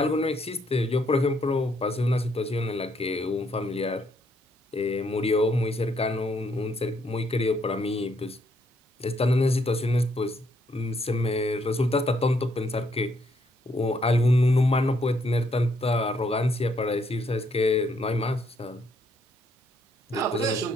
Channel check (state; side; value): normal; both; correlation 0.72